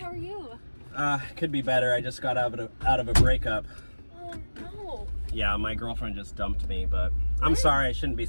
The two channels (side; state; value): both; inverted; correlation -1.00